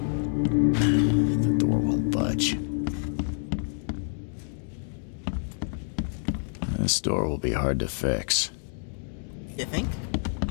The door won't budge. This door will be hard to fix. You think?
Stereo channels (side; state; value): right; silent; digital silence